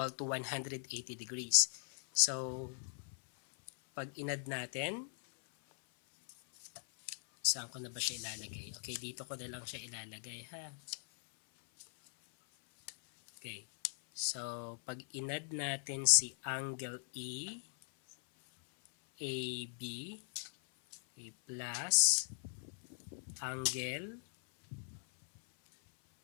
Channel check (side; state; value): right; silent; 51 dB below the other